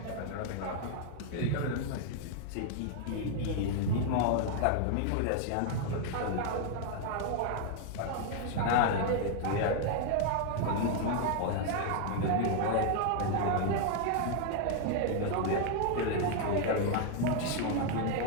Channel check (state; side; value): different; both; correlation 0.00